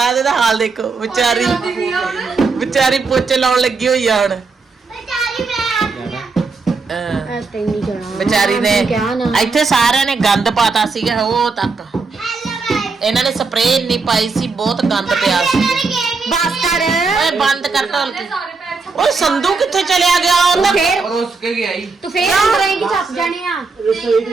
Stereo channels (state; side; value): quieter; left; 4.4 dB